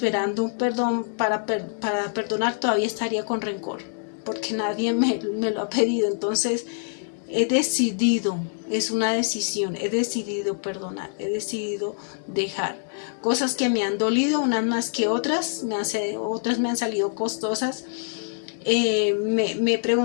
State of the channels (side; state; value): right; silent; digital silence